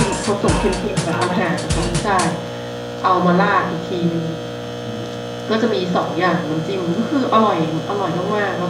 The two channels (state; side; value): identical; both; correlation 1.00